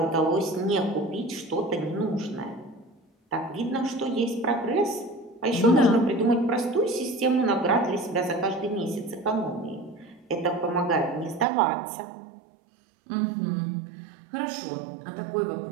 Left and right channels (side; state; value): left; drops out; at 11.5 s